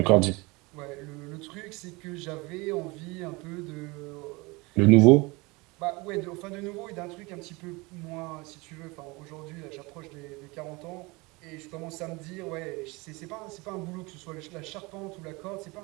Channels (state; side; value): quieter; left; 25.0 dB